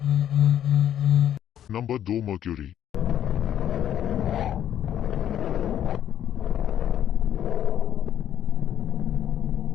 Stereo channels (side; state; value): right; quieter; 10.5 dB